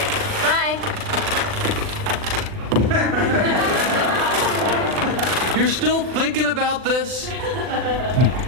Hi. You're still thinking about this?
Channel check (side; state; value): left; late; 39 ms